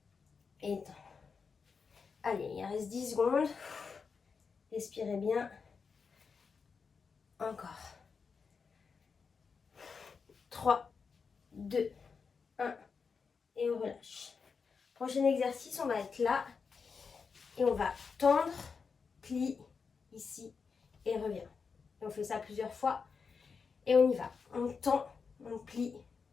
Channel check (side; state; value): right; quieter; 5.4 dB